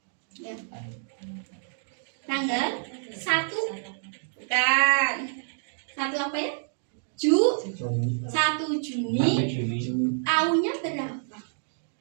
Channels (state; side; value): silent; left; digital silence